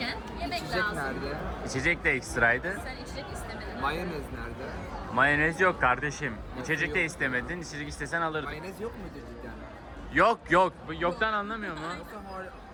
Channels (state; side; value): identical; both; correlation 1.00